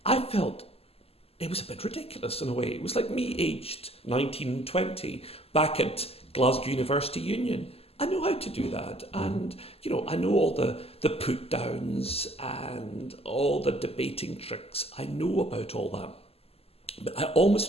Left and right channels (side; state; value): right; late; 0.29 ms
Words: I felt it was a bit ridiculous in a way. It was like me aged 19, 20 back at Glasgow University Union. I know how to do that, and I know all the put downs and all the debating tricks. I know about all that, but I